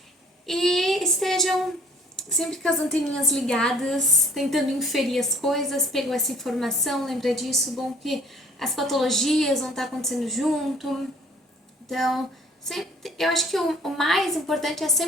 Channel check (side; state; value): both; normal; correlation 0.56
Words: E estejam sempre com as anteninhas ligadas, tentando inferir as coisas, pegou essa informação, lembra disso, bom que as patologias vão estar acontecendo junto. Então, eu acho que o mais importante é